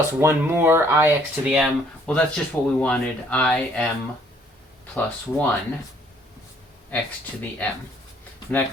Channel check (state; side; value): normal; both; correlation 0.62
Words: one more I x to the m. Well, that's just what we wanted. I m plus 1 x to the m. And that